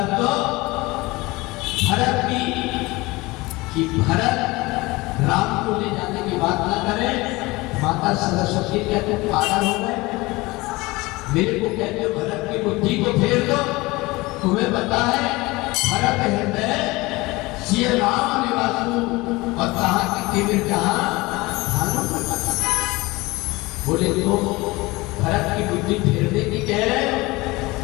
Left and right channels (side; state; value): right; quieter; 22.0 dB